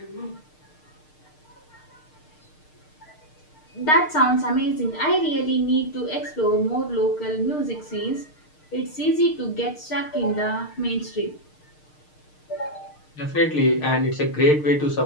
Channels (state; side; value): late; right; 6.5 ms